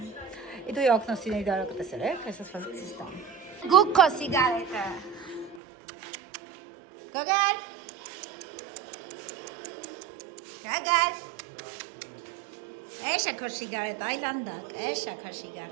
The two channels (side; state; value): left; drops out; at 5.6 s